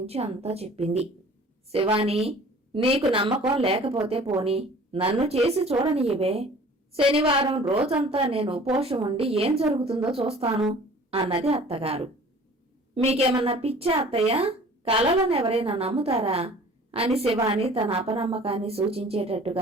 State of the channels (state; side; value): normal; both; correlation 0.47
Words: అంతా చెప్పింది. శివాని, నీకు నమ్మకం లేకపోతే పోని, నన్ను చేసి చూడనియవే. శనివారం రోజంతా నేను ఉపవాసం ఉండి ఏం జరుగుతుందో చూస్తాను అన్నది అత్తగారు. మీకేమన్నా పిచ్చా అత్తయ్య? కలలనెవరైనా నమ్ముతారా అని శివాని తన అపనమ్మకాన్ని